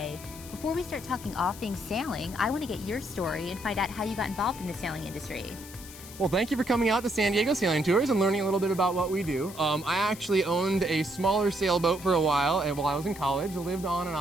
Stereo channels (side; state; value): left; noise; hiss, 16 dB below the sound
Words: Before we start talking all things sailing, I want to get your story and find out how you got involved in the sailing industry. Well, thank you for coming out to San Diego Sailing Tours and learning a little bit about what we do. I actually owned a smaller sailboat for a while, and while I was in college, I lived on and